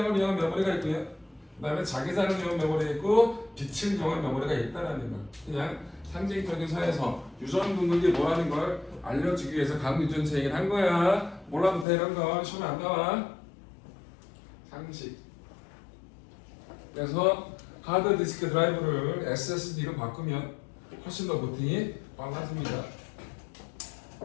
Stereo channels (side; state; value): right; drops out; at 11.9 s